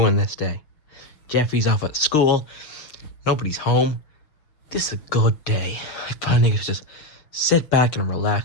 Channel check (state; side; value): late; right; 6.5 ms